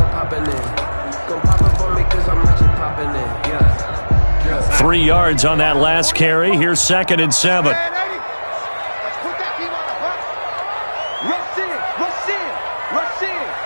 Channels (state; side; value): inverted; both; correlation -1.00